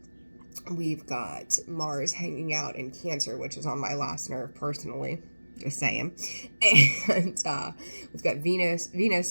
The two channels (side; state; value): both; inverted; correlation -1.00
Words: We've got Mars hanging out in Cancer, which is on my last nerve personally. Just saying. And we've got Venus.